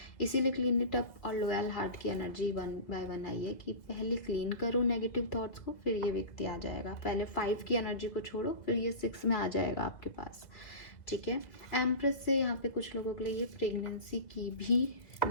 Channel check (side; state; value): right; late; 2.2 ms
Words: इसीलिए क्लीन इट अप और लॉयल हार्ट की एनर्जी 1 बाय 1 आई है कि पहले क्लीन करो नेगेटिव थॉट्स को, फिर ये व्यक्ति आ जाएगा। पहले 5 की एनर्जी को छोड़ो, फिर ये 6 में आ जाएगा आपके पास, ठीक है। एम्प्रेस से यहाँ पे कुछ लोगों के लिए ये प्रेगनेंसी की भी